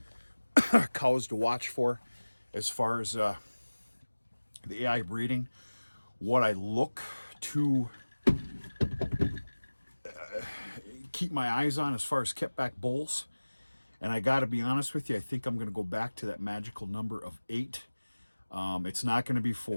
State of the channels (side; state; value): both; inverted; correlation -1.00